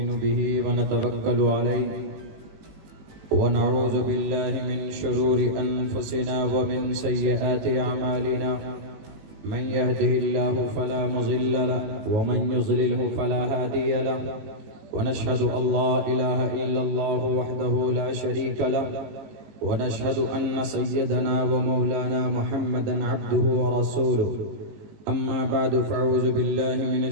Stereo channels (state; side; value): late; left; 19 ms